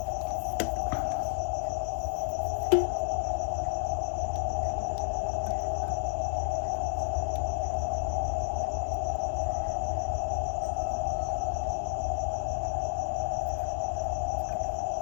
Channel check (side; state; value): right; silent; digital silence